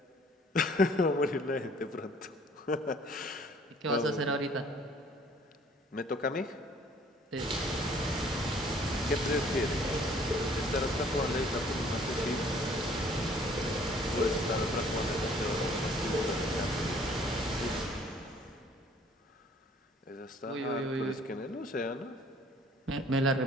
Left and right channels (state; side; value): normal; both; correlation 0.56